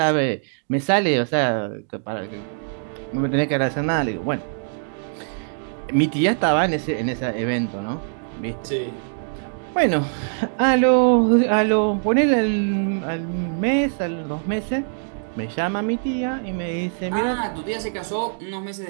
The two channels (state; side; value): silent; left; digital silence